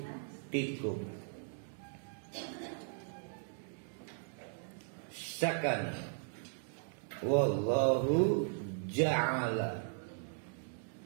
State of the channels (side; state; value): left; silent; digital silence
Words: sakana. Wallahu ja'ala,